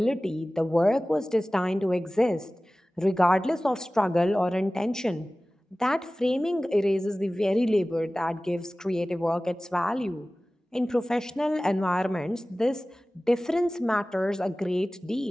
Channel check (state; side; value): normal; both; correlation 0.97